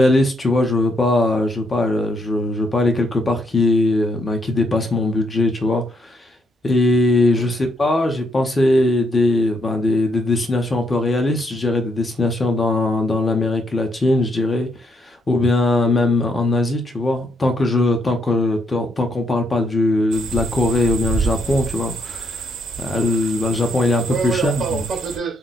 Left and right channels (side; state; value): both; normal; correlation 0.75